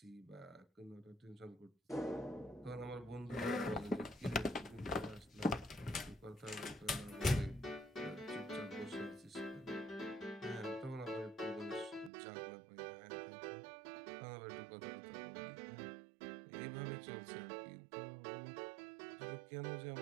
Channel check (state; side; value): drops out; left; at 12.1 s